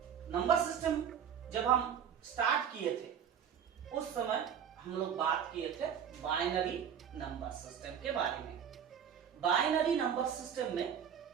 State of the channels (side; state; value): left; quieter; 8.3 dB